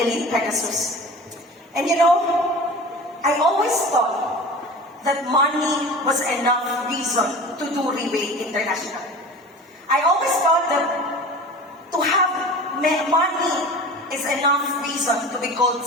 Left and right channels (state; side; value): normal; both; correlation 0.37